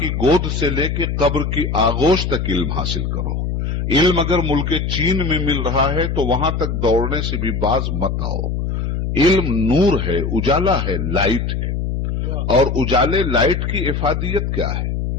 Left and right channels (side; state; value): left; noise; hum, 1 dB below the sound